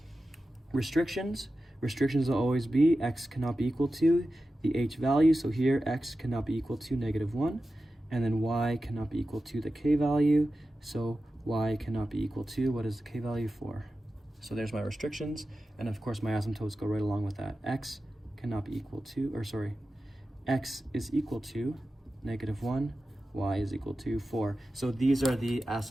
Restrictions. Restrictions will always be x cannot be equal to the h value. So here, x cannot be equal to -1. And then y cannot be equal to the k value. So y cannot be equal to, what is the k value for? So there's my restrictions. And of course, my asymptotes go right along with that. X cannot be equal to, x is equal to -1. Y is equal to 4. So these are the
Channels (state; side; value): normal; both; correlation 0.93